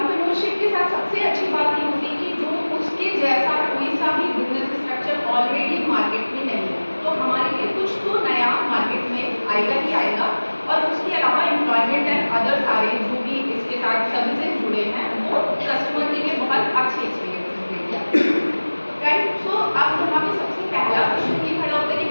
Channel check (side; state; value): both; inverted; correlation -1.00